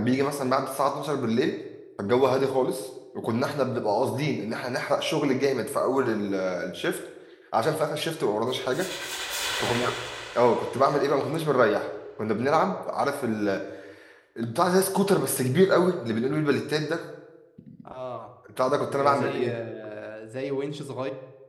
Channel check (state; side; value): identical; both; correlation 1.00